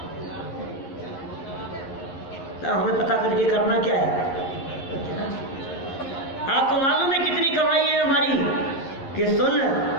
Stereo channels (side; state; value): right; late; 11 ms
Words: हमें पता करके करना क्या है? आपको मालूम है कितनी कमाई है हमारी? कि सुन